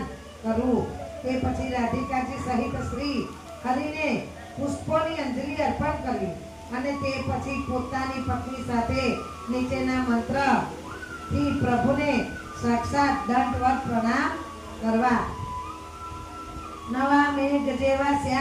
કરવું. તે પછી રાધિકાજી સહિત શ્રી હરિને પુષ્પોની અંજલિ અર્પણ કરવી અને તે પછી પોતાની પત્ની સાથે નીચેના મંત્રથી પ્રભુને સાક્ષાત દંડવત પ્રણામ કરવા. નવા મેઘ જેવા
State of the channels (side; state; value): both; identical; correlation 1.00